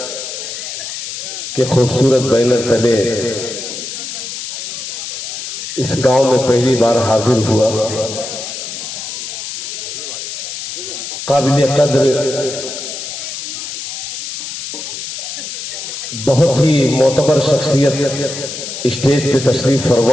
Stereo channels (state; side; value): noise; left; hiss, 7 dB below the sound